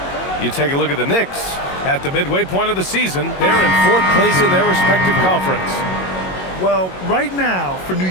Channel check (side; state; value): right; late; 22 ms